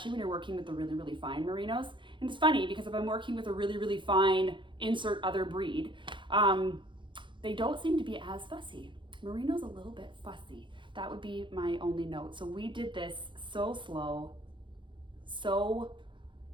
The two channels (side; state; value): left; late; 0.23 ms